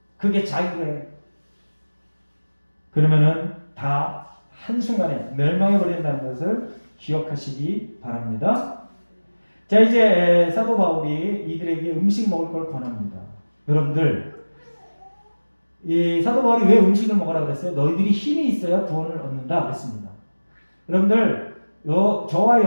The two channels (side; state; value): both; inverted; correlation -1.00